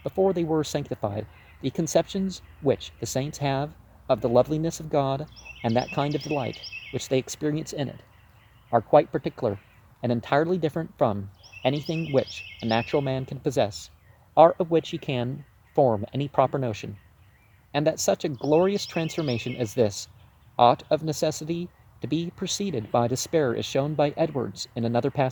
before they were sanctified. The conceptions which the saints have of the loveliness of God and that kind of delight which they experience in it are quite particular and entirely different from anything which a natural man can possess, or of which he can form any proper notion, and that such a glorious transformation as this ought of necessity to be preceded by despair is shown by Edwards in another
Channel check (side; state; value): both; identical; correlation 1.00